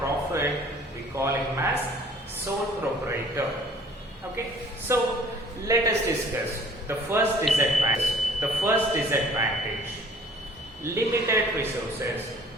we call him as sole proprietor. Okay, so let us discuss the first disadvantage. Limited resources.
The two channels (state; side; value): normal; both; correlation 0.53